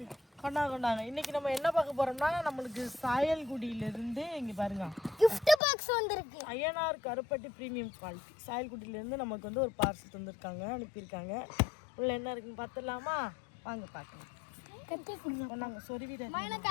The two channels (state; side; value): drops out; right; at 5.6 s